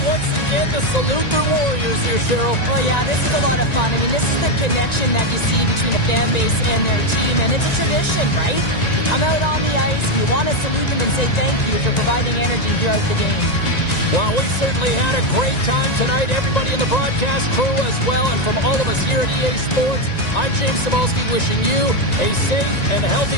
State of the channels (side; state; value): right; late; 1.9 ms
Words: once again to salute their Warriors here, Cheryl. Well, yeah, this is a lot of fun. I mean, this is the connection that you see between a fan base and their team, and it's a tradition, right? You come out on the ice, and you want to salute them and say thank you for providing energy throughout the game. Well, we certainly had a great time tonight. Everybody in the broadcast crew as well, and from all of us here at EA Sports, I'm James Cybulski wishing you a safe and